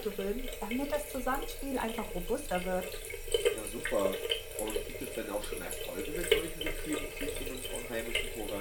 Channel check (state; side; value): identical; both; correlation 1.00